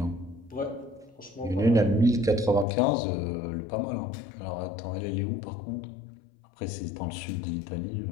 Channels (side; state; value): right; drops out; at 2.7 s